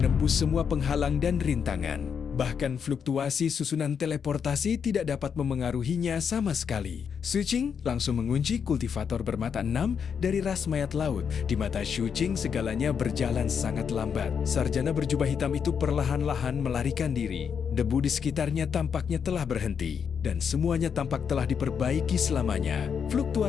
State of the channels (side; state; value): right; quieter; 7.0 dB